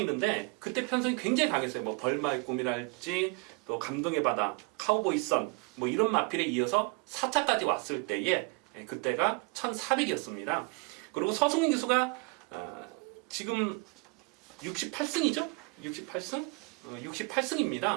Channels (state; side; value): quieter; left; 28.7 dB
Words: 그때 편성이 굉장히 강했어요. 뭐 벌마의 꿈이랄지 또 감동의 바다, 카우보이 선 뭐 이런 마필에 이어서 4차까지 왔을 때에 그때가 1400이었습니다. 그리고 서승훈 기수가 지금 68승이죠? 68승?